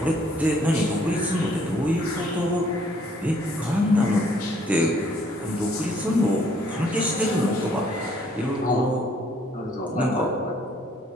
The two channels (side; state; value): both; normal; correlation 0.64